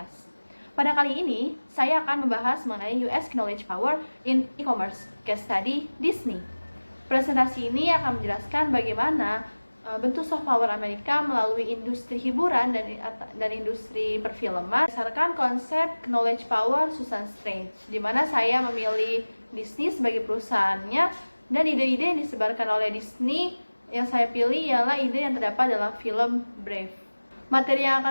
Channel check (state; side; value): inverted; both; correlation -1.00